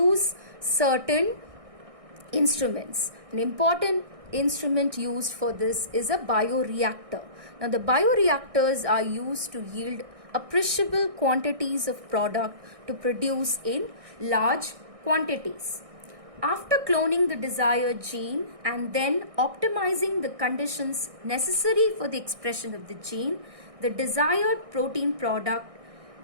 certain instruments. An important instrument used for this is a bioreactor. Now the bioreactors are used to yield appreciable quantities of product to produce in large quantities. After cloning the desired gene and then optimizing the conditions necessary for the expression of the gene, the desired protein product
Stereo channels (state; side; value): late; left; 1.6 ms